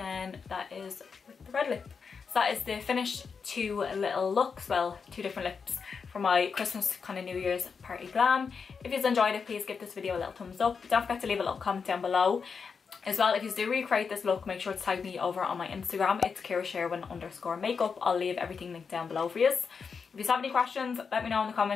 that is with the red lip. So that is the finished 2 little looks, well, 2 different lips for my Christmas kind of New Year's party glam. If you've enjoyed it, please give this video a little thumbs up. Don't forget to leave a little comment down below. As well, if you do recreate this look, make sure to tag me over on my Instagram. It's KiraSherwin_makeup. I'll leave everything linked down below for you. If you have any questions, let me know in the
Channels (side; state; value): right; quieter; 5.7 dB